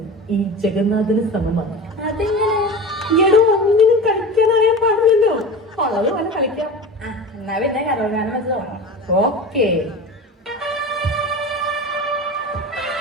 ഈ ജഗന്നാഥന് സമമാണ്. അതെങ്ങനെ? ഒന്നിനും കളിക്കാൻ അറിയാൻ പാടില്ലല്ലോ. ഉള്ളത് പോലെ കളിക്കാം. എന്നാ പിന്നെ കരോഗാനം വെച്ച് തുടങ്ങാം. ഓക്കേ.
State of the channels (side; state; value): both; normal; correlation 0.31